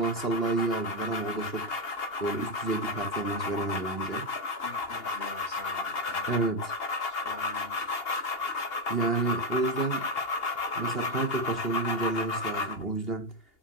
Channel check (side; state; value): right; late; 2.8 ms